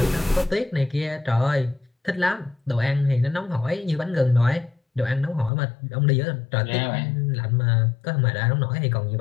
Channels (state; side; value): drops out; right; at 5.5 s